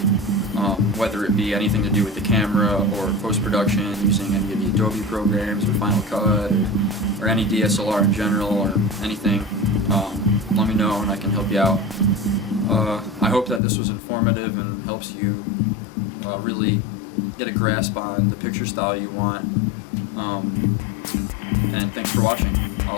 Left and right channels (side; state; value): right; drops out; at 13.6 s